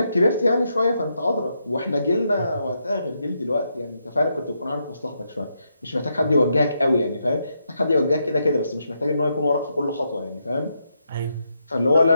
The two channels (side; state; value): both; inverted; correlation -0.81